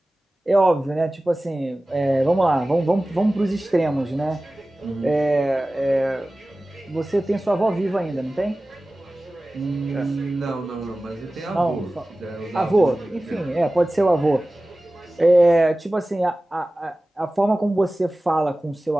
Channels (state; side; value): normal; both; correlation 0.97